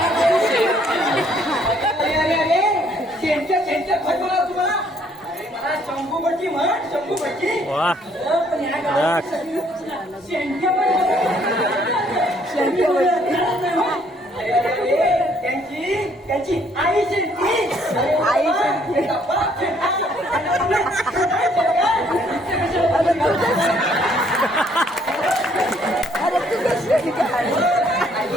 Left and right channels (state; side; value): normal; both; correlation 0.65